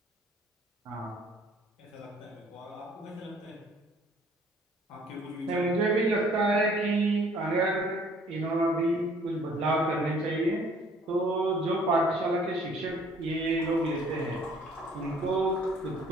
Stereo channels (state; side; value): normal; both; correlation 0.57